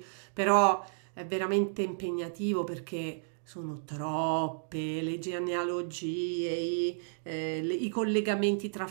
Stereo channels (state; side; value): silent; left; digital silence